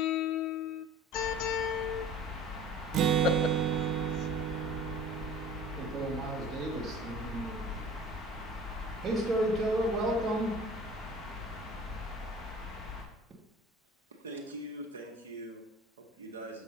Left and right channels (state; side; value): normal; both; correlation 0.44